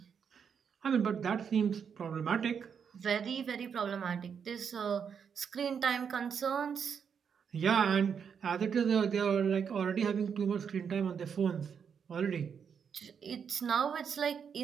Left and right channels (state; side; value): quieter; left; 7.0 dB